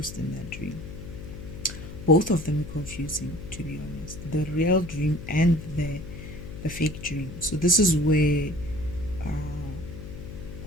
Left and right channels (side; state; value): left; noise; hum, 11 dB below the sound